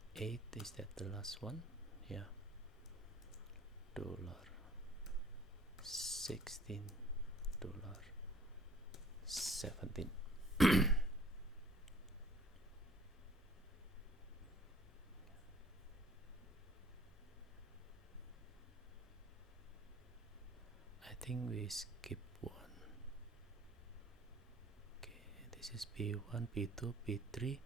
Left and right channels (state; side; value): normal; both; correlation 0.55